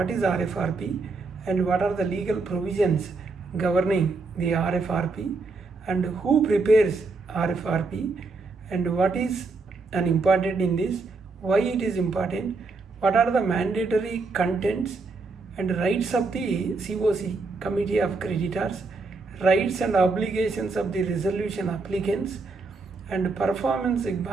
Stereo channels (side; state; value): left; quieter; 3.9 dB